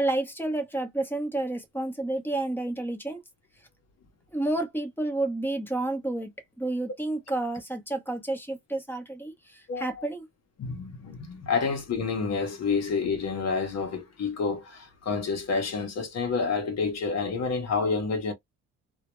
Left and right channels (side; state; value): both; normal; correlation 0.29